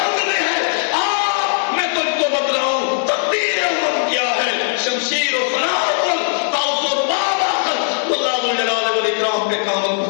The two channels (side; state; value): right; silent; digital silence